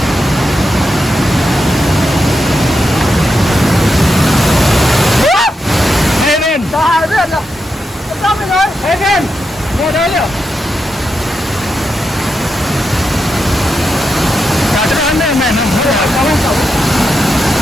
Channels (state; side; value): normal; both; correlation 0.86